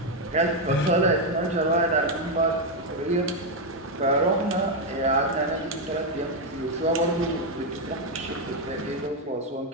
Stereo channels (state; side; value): normal; both; correlation 0.03